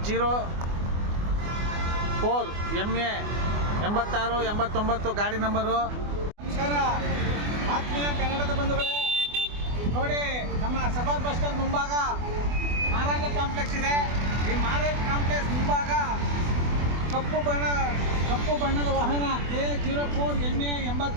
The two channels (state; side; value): late; left; 24 ms